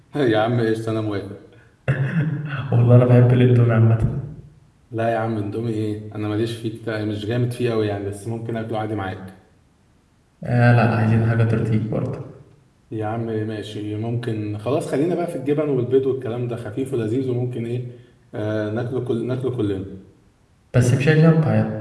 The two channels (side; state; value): both; identical; correlation 1.00